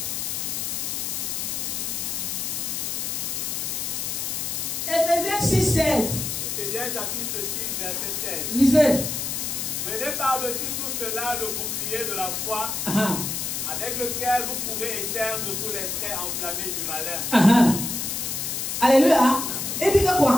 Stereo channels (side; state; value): left; noise; hiss, 2 dB below the sound